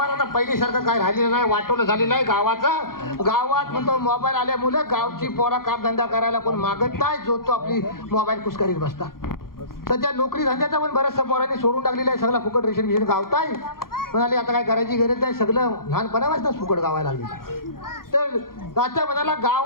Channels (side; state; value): right; late; 0.92 ms